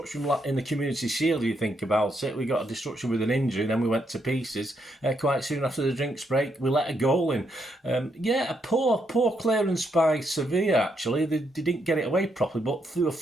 in the Community Shield, you think about it, we got a disruption with an injury, then we went to pieces. Quite soon after the drinks break, we let a goal in. A poor clearance by Sevilla, actually. They didn't get it away properly, but they were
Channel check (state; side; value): normal; both; correlation 0.77